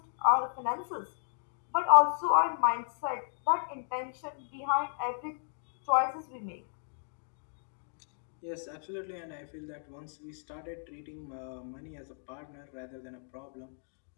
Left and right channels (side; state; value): right; silent; digital silence